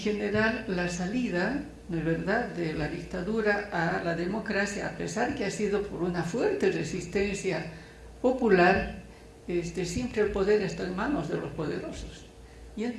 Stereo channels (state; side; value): identical; both; correlation 1.00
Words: la salida, ¿no es verdad?, de la dictadura a la democracia, a pesar que ha sido por una fuerte resistencia popular, siempre el poder está en manos de los poderosos, y